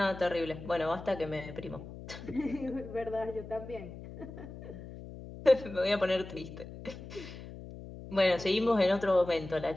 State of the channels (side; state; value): left; noise; hum, 13 dB below the sound